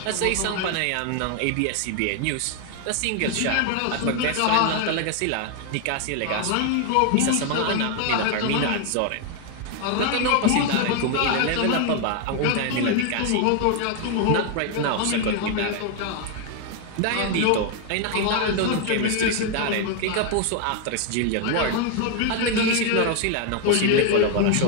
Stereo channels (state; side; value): different; both; correlation 0.00